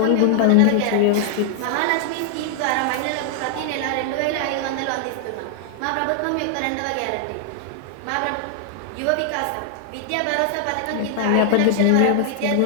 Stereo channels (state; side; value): different; both; correlation 0.00